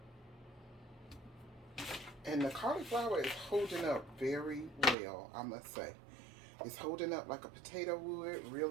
And the cauliflower is holding up very well, I must say. It's holding up like a potato would,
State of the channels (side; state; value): left; drops out; at 5.0 s